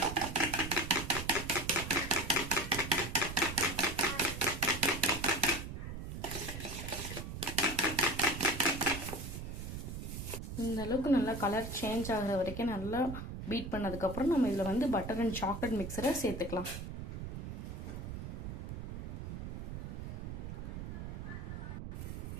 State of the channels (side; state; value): right; noise; rumble, 7 dB below the sound